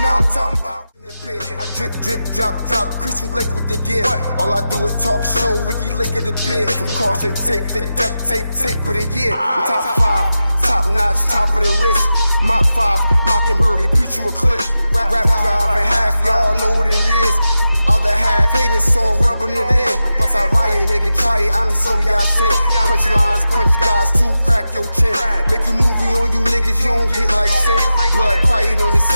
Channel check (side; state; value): both; inverted; correlation -0.91